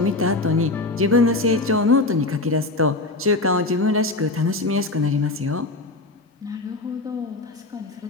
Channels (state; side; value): quieter; right; 3.1 dB